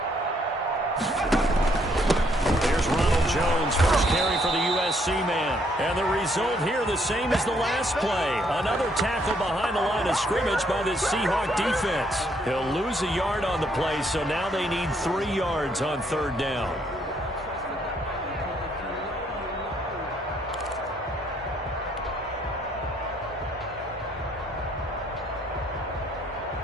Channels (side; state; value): both; normal; correlation 0.69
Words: There's Ronald Jones, first carry for the USC man. And the result here the same as the last play. Another tackle behind the line of scrimmage by this Seahawk defense. He'll lose a yard on the play, so now they need 3 yards on 3rd down.